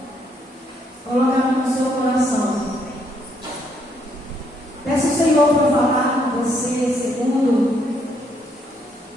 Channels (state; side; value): normal; both; correlation 0.72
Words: Coloca no seu coração. Peço ao Senhor para falar com você segundo